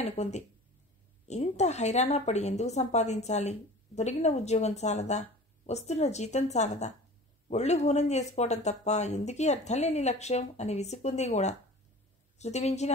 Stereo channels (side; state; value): both; normal; correlation 0.40